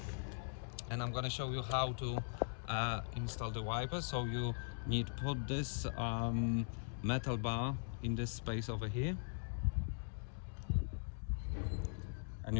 and I'm gonna show you how to install the wiper. So you need to put this metal bar in this space over here, and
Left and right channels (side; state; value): right; silent; digital silence